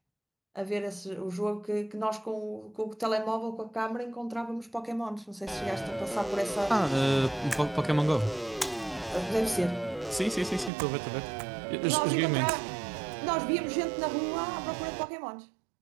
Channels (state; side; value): drops out; left; at 10.7 s